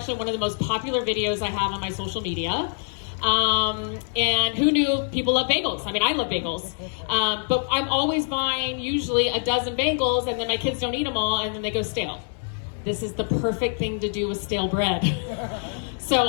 one of the most popular videos I have on my social media. And who knew people love bagels? I mean, I love bagels. But I'm always buying usually a dozen bagels, and then my kids don't eat them all, and then they go stale. This is the perfect thing to do with stale bread.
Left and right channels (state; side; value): silent; right; 62 dB below the other